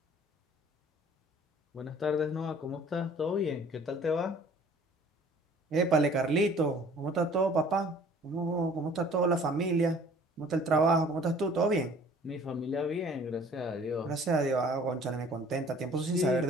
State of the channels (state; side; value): normal; both; correlation 0.52